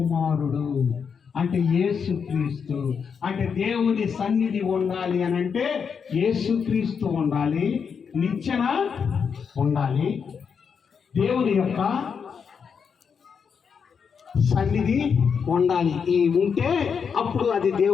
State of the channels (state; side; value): quieter; right; 6.4 dB